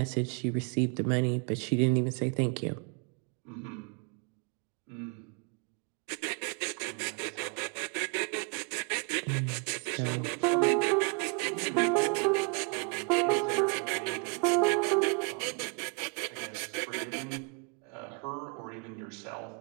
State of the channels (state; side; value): quieter; left; 35.8 dB